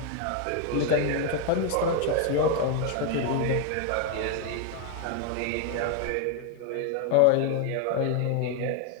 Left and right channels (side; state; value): both; different; correlation 0.00